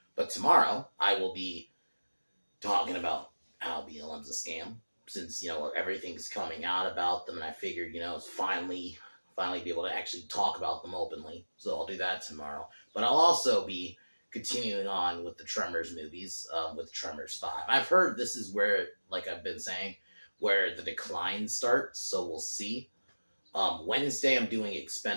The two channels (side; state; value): both; inverted; correlation -1.00